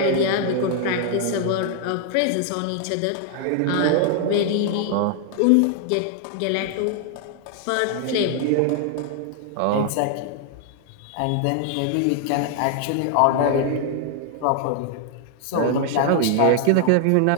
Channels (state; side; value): different; both; correlation 0.00